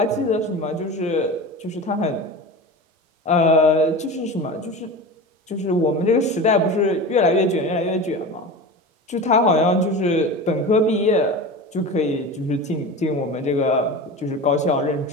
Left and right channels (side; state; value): both; normal; correlation 0.30